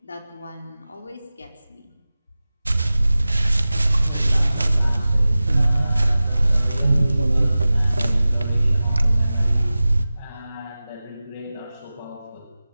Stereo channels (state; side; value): inverted; both; correlation -0.96